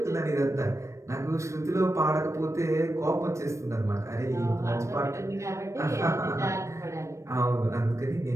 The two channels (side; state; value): left; late; 0.14 ms